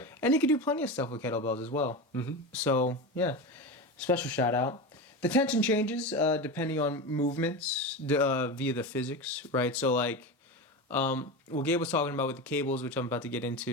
And you can do plenty of stuff with kettlebells as well. Mm-hmm. So, yeah, special shout out. The tension changes depending on movements via the physics, right? So, like, what Gabe was talking about with the cables, which I'm about to get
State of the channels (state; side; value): normal; both; correlation 0.22